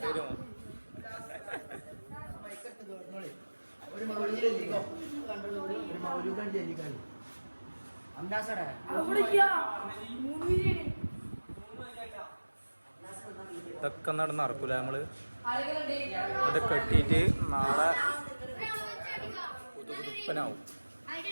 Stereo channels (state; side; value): inverted; both; correlation -1.00